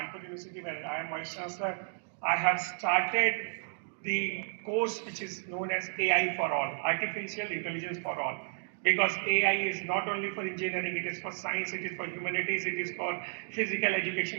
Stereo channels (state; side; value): silent; left; digital silence